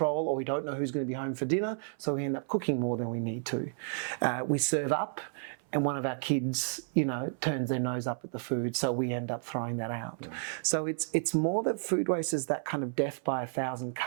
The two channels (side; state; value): left; silent; 57 dB below the other